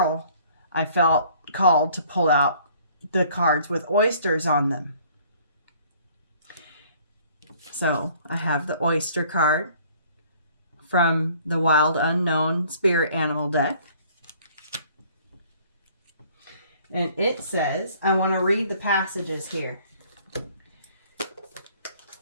I felt called to pull out the cards with oysters on them. So I have the oyster card from the Wild Unknown Spirit Animal deck. And it says, I want to read the passages here.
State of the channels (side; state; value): both; inverted; correlation -0.57